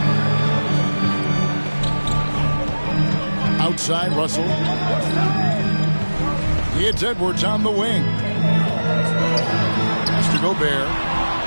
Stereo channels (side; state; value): both; inverted; correlation -1.00